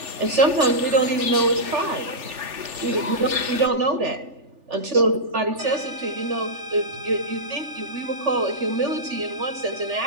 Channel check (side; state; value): left; late; 3.4 ms